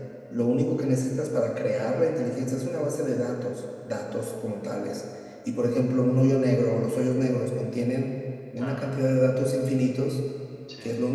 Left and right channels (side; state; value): both; identical; correlation 1.00